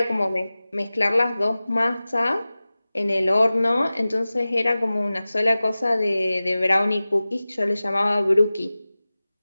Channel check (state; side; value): inverted; both; correlation -0.97